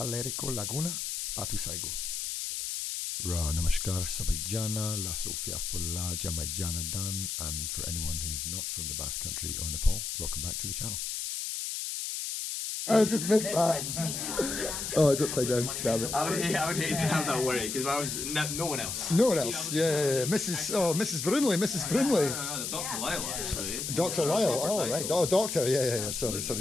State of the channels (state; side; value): noise; left; hiss, 3 dB below the sound